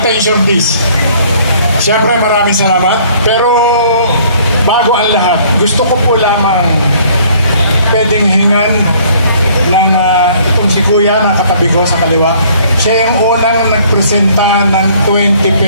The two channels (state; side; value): inverted; both; correlation -0.58